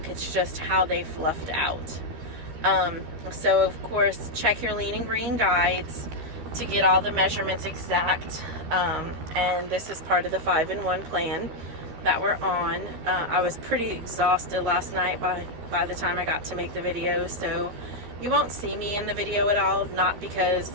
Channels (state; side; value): late; left; 13 ms